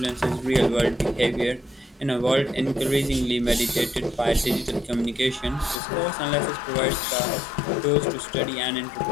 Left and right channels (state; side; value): drops out; right; at 5.8 s